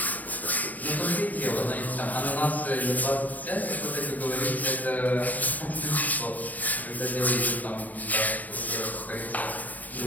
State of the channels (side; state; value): right; late; 0.078 ms